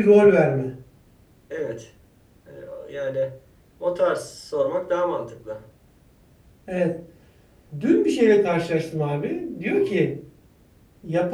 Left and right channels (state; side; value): identical; both; correlation 1.00